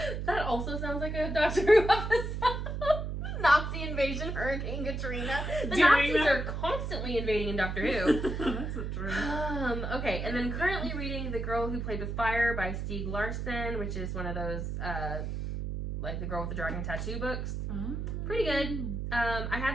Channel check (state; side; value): noise; right; hum, 3 dB below the sound